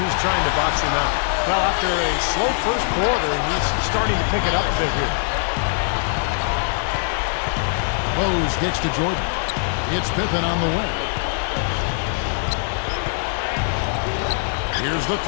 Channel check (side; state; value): right; silent; 58 dB below the other